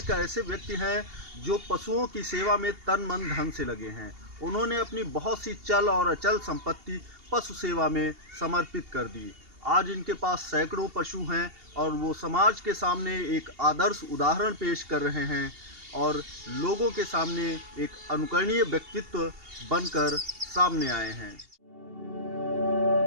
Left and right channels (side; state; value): left; late; 2.8 ms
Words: ऐसे व्यक्ति हैं जो पशुओं की सेवा में तन मन धन से लगे हैं। उन्होंने अपनी बहुत सी चल और अचल संपत्ति पशु सेवा में समर्पित कर दी। आज इनके पास सैकड़ों पशु हैं और वो समाज के सामने एक आदर्श उदाहरण पेश कर रहे हैं और लोगों के सामने एक अनुकरणीय व्यक्तित्व बनकर सामने आए हैं।